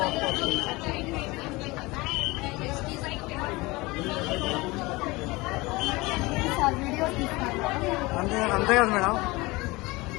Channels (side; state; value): right; quieter; 22.6 dB